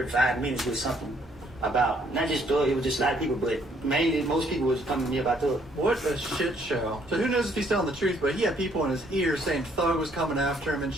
5 minutes with something. about not just Thug, it was just a lot of people, but mainly most people was coming to me about Thug. What a shit show. So who knows if he's telling the truth, but he had people in his ear saying Thug was coming after him and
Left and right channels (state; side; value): normal; both; correlation 0.66